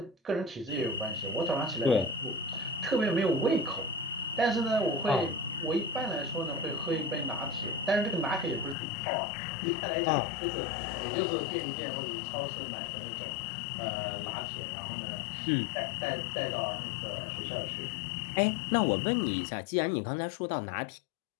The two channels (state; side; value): drops out; right; at 8.8 s